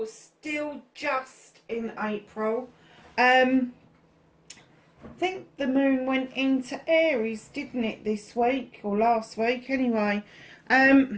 still just in April. I think the moon went into Aries, didn't it, this week or last week anyway.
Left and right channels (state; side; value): identical; both; correlation 1.00